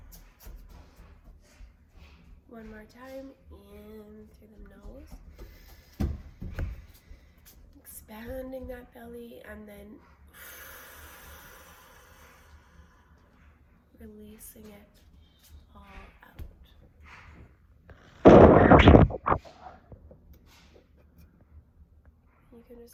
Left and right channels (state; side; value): identical; both; correlation 1.00